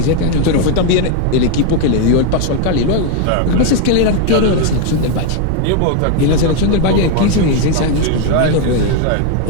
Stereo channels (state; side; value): different; both; correlation 0.01